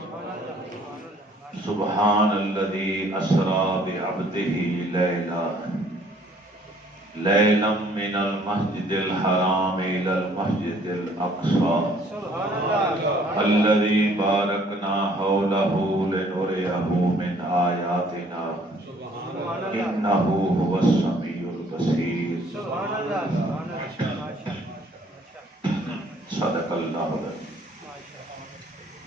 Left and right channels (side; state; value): both; normal; correlation 0.59